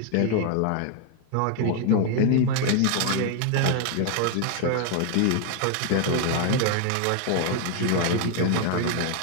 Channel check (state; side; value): different; both; correlation 0.00